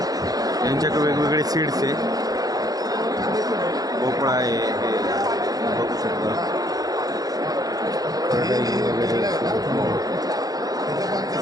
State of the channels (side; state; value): left; late; 0.18 ms